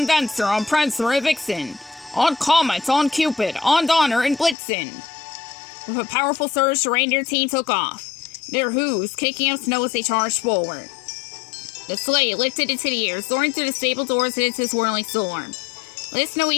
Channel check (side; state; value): right; drops out; at 4.5 s